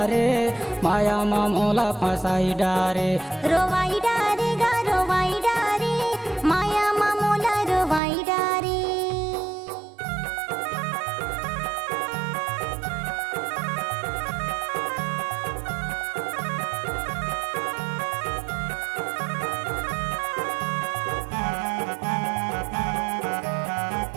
माया मामूला फसाई डारे रोवाई डारे गा रोवाई डारे माया मामूला रोवाई डारे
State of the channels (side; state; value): left; drops out; at 8.0 s